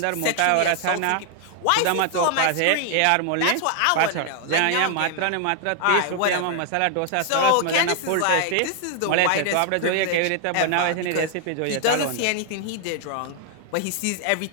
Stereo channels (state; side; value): different; both; correlation 0.00